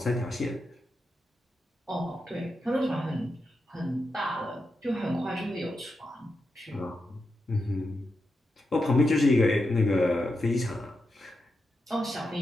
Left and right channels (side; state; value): both; normal; correlation 0.87